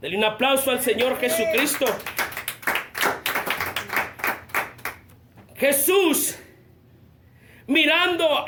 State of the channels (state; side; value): identical; both; correlation 1.00